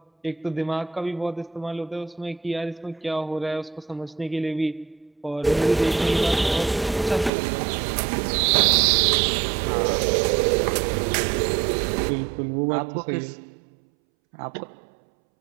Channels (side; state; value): left; drops out; at 7.3 s